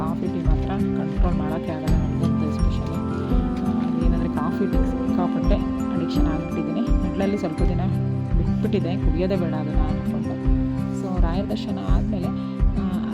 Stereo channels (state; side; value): identical; both; correlation 1.00